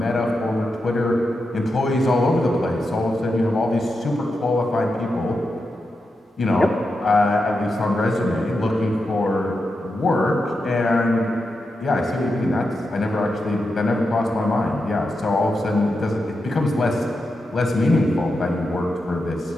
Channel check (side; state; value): both; normal; correlation 0.88